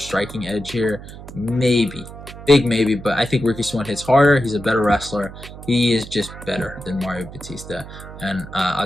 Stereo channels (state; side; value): noise; right; hum, 14 dB below the sound